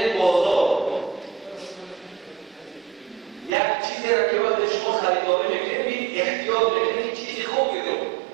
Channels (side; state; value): left; drops out; at 3.5 s